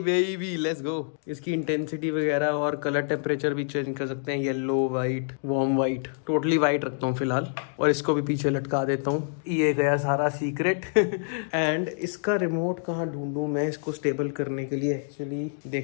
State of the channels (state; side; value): silent; right; digital silence